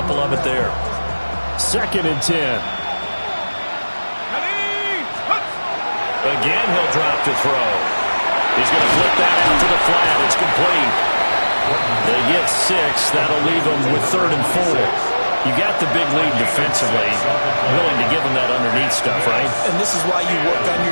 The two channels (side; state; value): both; inverted; correlation -1.00